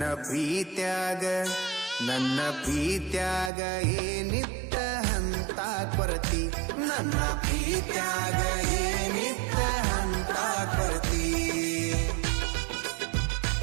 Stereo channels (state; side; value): drops out; left; at 3.5 s